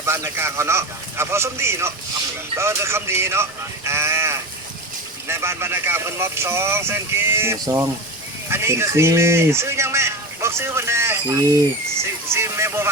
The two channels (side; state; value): both; normal; correlation 0.25